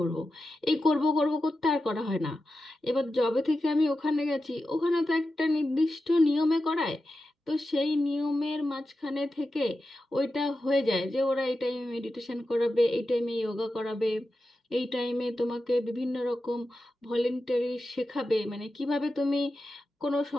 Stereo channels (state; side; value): normal; both; correlation 0.91